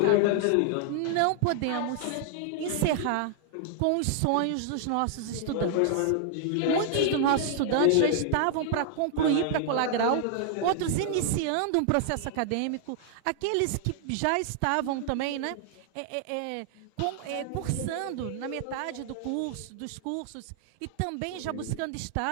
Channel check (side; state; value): both; different; correlation -0.01